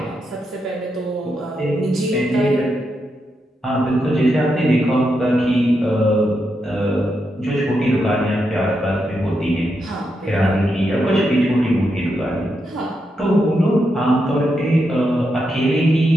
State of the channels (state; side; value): normal; both; correlation 0.84